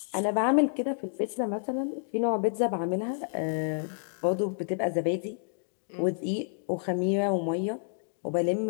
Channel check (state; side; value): silent; right; digital silence